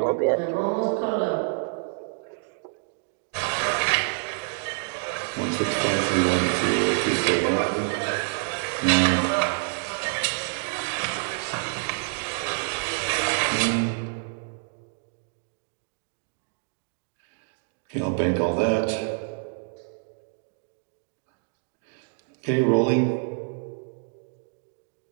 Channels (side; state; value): left; silent; 60 dB below the other